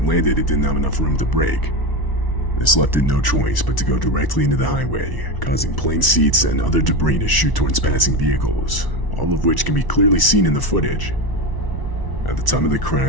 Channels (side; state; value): right; late; 1.0 ms